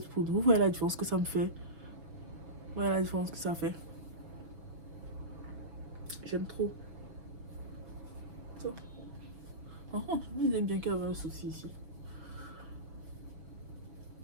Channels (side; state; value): left; late; 6.1 ms